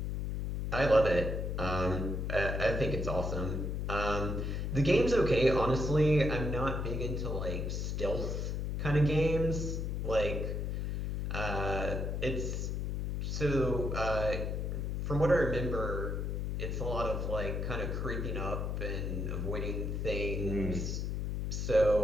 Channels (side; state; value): left; noise; hum, 2 dB below the sound